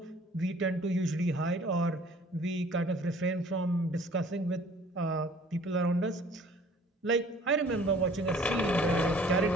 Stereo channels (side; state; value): both; normal; correlation 0.53